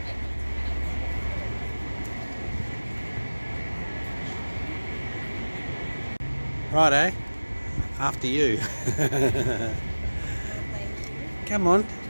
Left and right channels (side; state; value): both; inverted; correlation -1.00